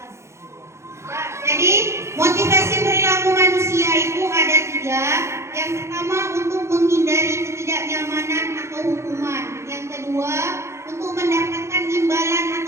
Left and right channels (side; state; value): left; late; 0.13 ms